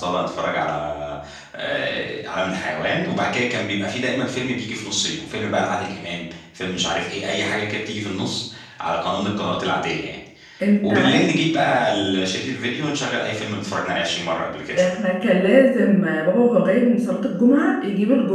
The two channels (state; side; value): identical; both; correlation 1.00